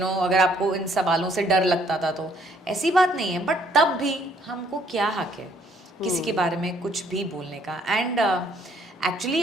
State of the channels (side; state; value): both; normal; correlation 0.64